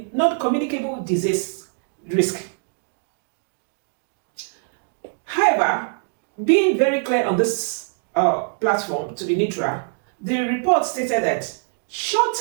non-communicable disease risk. However, being very clear on this platform to be neutral, the report stated that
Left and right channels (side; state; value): left; silent; digital silence